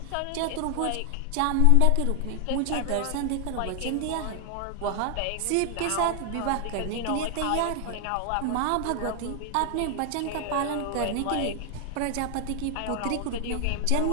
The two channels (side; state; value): both; different; correlation 0.00